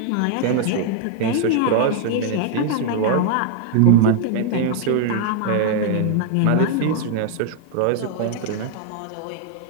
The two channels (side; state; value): both; different; correlation 0.00